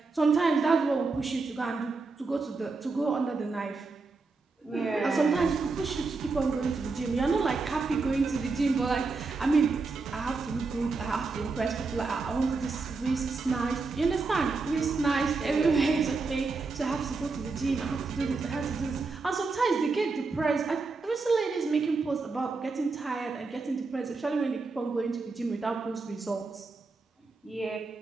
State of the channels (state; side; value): quieter; left; 4.0 dB